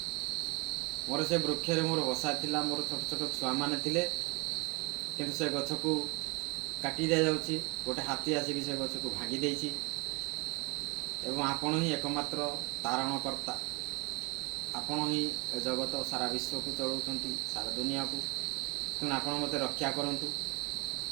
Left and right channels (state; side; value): quieter; left; 28.3 dB